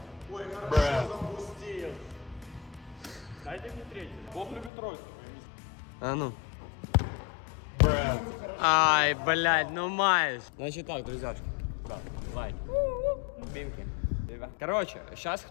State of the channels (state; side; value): drops out; right; at 4.7 s